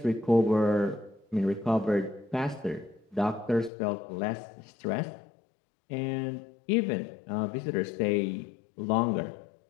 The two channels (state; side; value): drops out; right; at 3.7 s